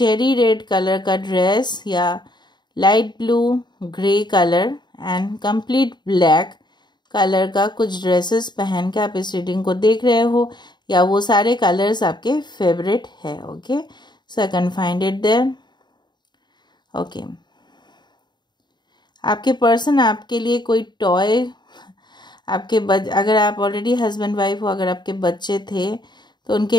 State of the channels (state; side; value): late; right; 0.21 ms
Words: रेड कलर का ड्रेस या light blue grey colour and complete black colour का कुछ ड्रेसेस पहन के आप इस रीडिंग को देख रहे हो, या वो सारे कलर्स आपके फेवरेट है, okay. So I can find it there, okay. आपके पर्सन आपके लिए कोई टॉय, अगर आप ऑलरेडी हस्बैंड वाइफ हो, अगर आपके बच्चे थे तो